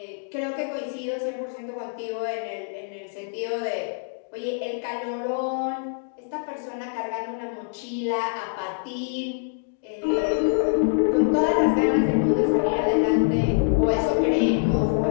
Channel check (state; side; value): silent; right; digital silence